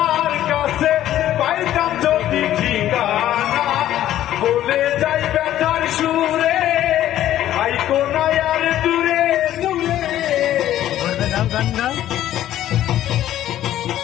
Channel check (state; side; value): quieter; right; 12.6 dB